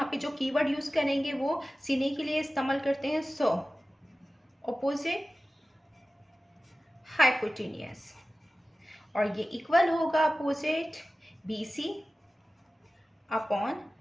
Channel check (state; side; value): normal; both; correlation 0.96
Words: पे जो कीवर्ड यूज करेंगे वो sin A के लिए इस्तेमाल करते हैं सो, अपोजिट हाइपोटेनियस, और ये इक्वल होगा opposite BC upon